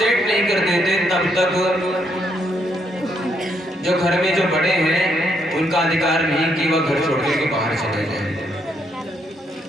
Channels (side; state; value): both; normal; correlation 0.74